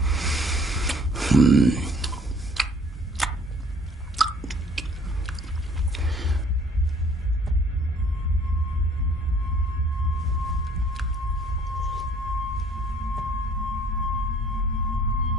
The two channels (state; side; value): normal; both; correlation 0.56